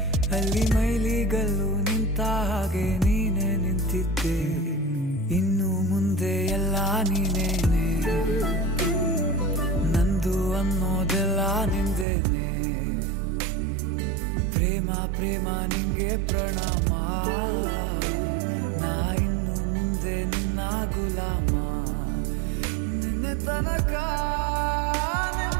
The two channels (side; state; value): left; drops out; at 12.1 s